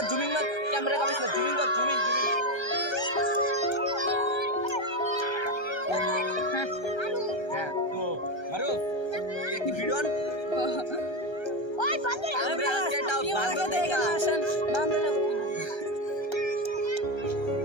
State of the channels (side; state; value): right; late; 1.3 ms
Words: ক্যামেরা কামিস না জুমিং তো মারুফ একটি ভিডিও ওই বান্দর আমরা আজকে একটা বান্দর দেখলাম